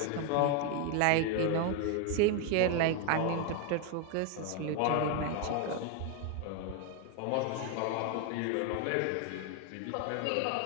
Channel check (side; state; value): both; different; correlation 0.01